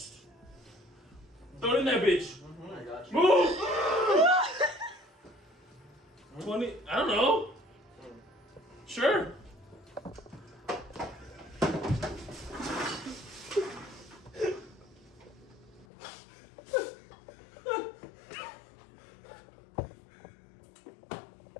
Throw it in that bitch. I got you. Move! 20, I don't know. Sure.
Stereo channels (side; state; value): right; drops out; at 15.9 s